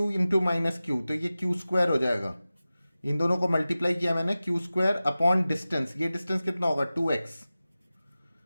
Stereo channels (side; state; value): both; inverted; correlation -0.96